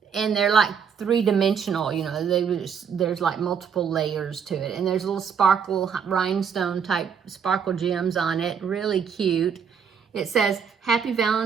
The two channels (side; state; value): left; quieter; 6.9 dB